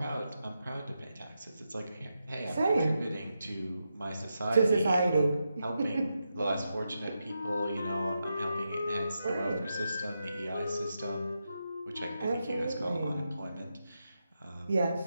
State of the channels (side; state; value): both; inverted; correlation -0.87